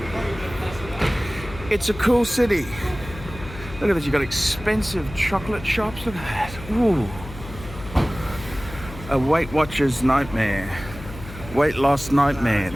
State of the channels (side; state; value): left; noise; hum, 14 dB below the sound